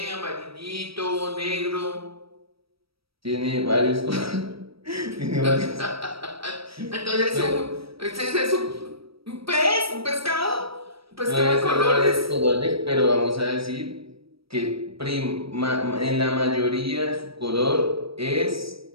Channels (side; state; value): left; late; 0.76 ms